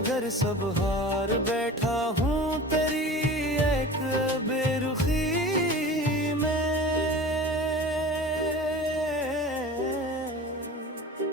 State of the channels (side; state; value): both; normal; correlation 0.37